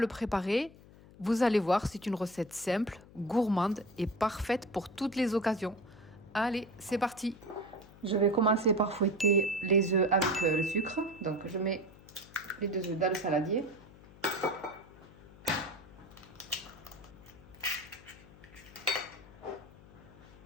préparer. Vous allez voir, c'est une recette simple, gourmande et parfaite pour toutes les occasions. Allez, c'est parti! Je vais commencer par fouetter les œufs avec le sucre. Donc je mets les 2 œufs dans le saladier.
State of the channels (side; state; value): left; noise; hum, 21 dB below the sound